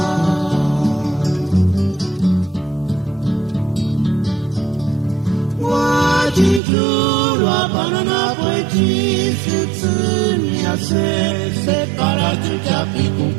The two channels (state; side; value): drops out; left; at 6.6 s